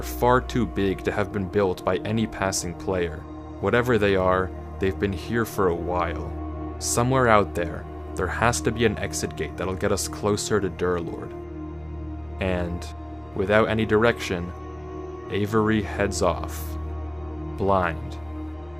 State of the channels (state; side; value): noise; right; hum, 29 dB below the sound